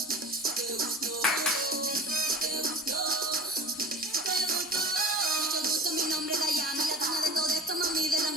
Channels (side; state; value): both; normal; correlation 0.39